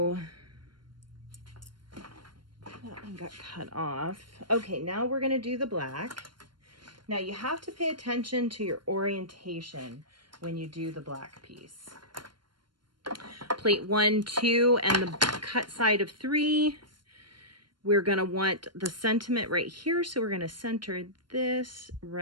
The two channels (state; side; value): late; left; 0.72 ms